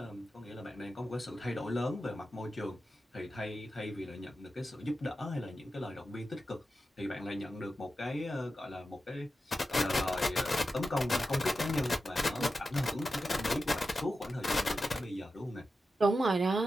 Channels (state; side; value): normal; both; correlation 0.91